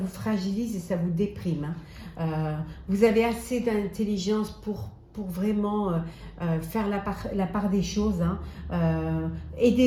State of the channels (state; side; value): identical; both; correlation 1.00